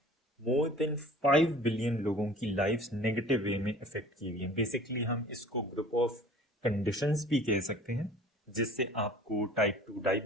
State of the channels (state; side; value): normal; both; correlation 0.47